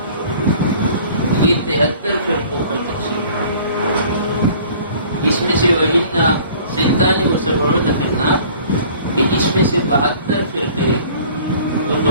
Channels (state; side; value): inverted; both; correlation -0.50